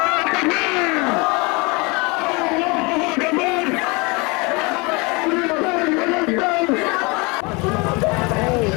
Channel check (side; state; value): right; quieter; 27.6 dB